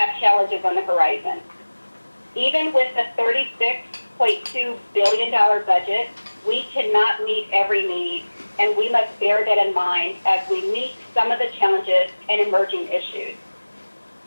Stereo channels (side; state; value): both; inverted; correlation -1.00